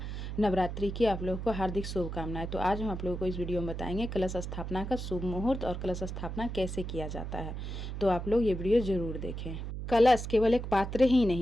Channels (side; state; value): right; noise; hum, 6 dB below the sound